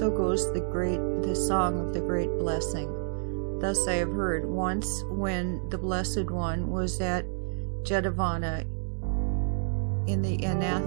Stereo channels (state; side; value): silent; left; 59 dB below the other